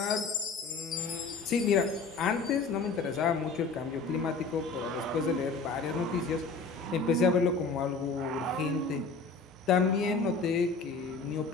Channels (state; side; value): quieter; right; 4.3 dB